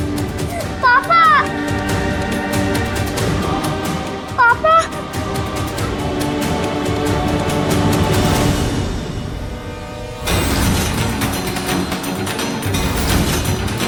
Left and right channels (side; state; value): both; identical; correlation 1.00